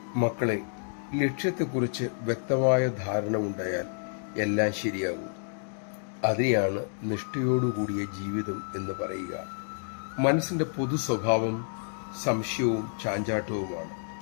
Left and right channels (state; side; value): silent; right; digital silence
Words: മക്കളെ, ലക്ഷ്യത്തെക്കുറിച്ച് വ്യക്തമായ ധാരണ ഉണ്ടായാൽ എല്ലാം ശരിയാകും. അതിനെയാണ് നിഷ്ഠയോടുകൂടിയ ജീവിതം എന്ന് പറയുക. മനസ്സിൻ്റെ പൊതു സ്വഭാവം സംശയവും ചാഞ്ചാട്ടവുമാണ്.